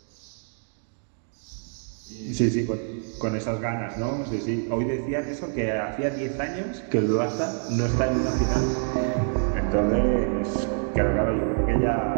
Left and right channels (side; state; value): left; silent; 61 dB below the other